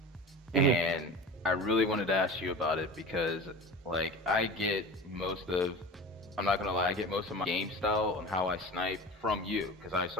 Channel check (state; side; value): normal; both; correlation 0.33